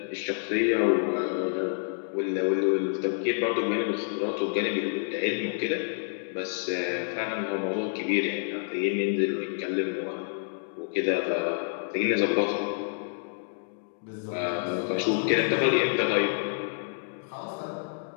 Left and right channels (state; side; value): silent; right; digital silence